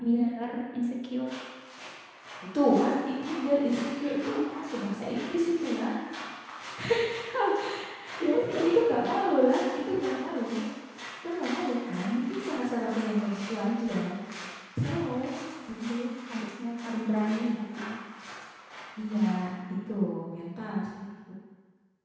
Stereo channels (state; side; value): identical; both; correlation 1.00